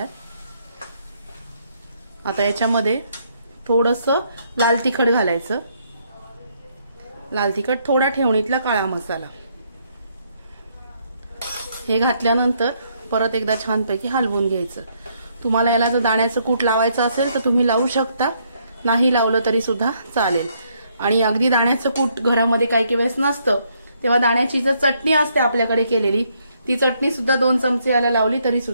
आता याच्यामध्ये थोडंसं लाल तिखट घालायचं, लाल तिखट, थोडा ठेवणीतला काळा मसाला, हे घातल्यानंतर परत एकदा छानपैकी हलवून घ्यायचं। तुम्हाला याला जर दाण्याचं कूट लावायचं असेल तर तुम्ही लावू शकता, नाही लावलं तरी सुद्धा चालेल। आणि अगदी दाण्याचं कूट घरामध्ये काही वेळेस नसतं, तेव्हा दाण्याची जर चटणी असते आपल्याकडे केलेली, ती चटणी सुद्धा 2 चमचे याला लावली तरी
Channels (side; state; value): both; inverted; correlation -0.72